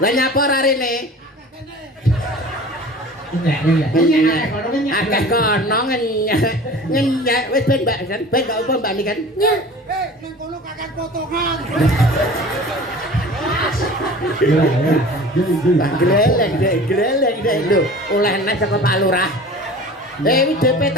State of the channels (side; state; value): both; normal; correlation 0.40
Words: Lah nyapa ora rene? Akeh kono ngenyek wis ben Mbak kan ben gak apa Mbak kan. Nya. Nang kono kakek potongan. Gleleng dek lho oleh nek saka Pak Lurah. WDP